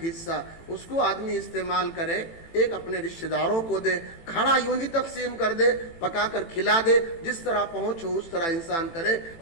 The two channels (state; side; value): late; right; 18 ms